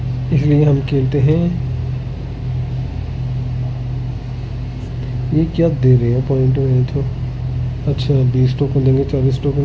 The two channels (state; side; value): identical; both; correlation 1.00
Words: इसलिए हम खेलते हैं। ये क्या दे रहे हैं पॉइंट में तो? अच्छा 20 टोकन देंगे, 40 टोकन